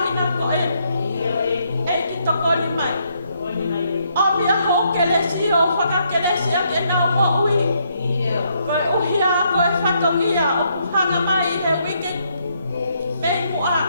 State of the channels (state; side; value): inverted; both; correlation -0.74